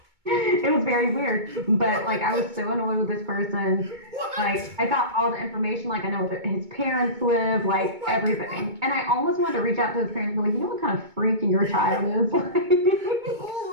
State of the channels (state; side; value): late; left; 2.2 ms